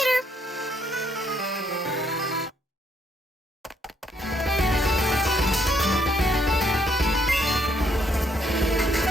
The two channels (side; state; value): both; normal; correlation 0.71